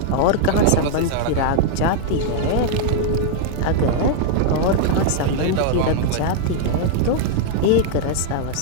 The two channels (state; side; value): different; both; correlation -0.01